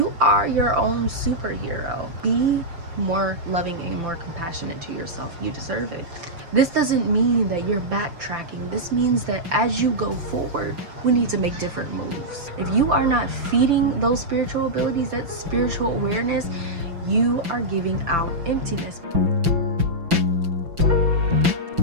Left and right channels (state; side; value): late; left; 5.9 ms